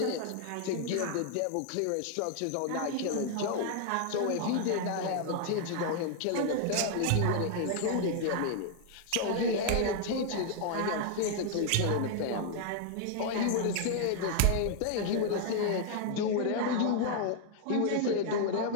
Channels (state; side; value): different; both; correlation 0.00